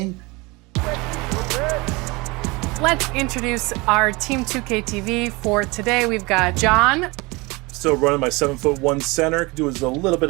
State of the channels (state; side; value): quieter; left; 25.1 dB